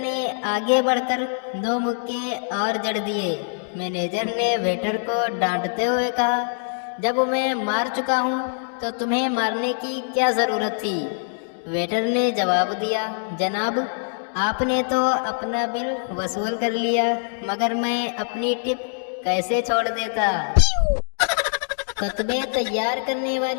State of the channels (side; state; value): right; silent; digital silence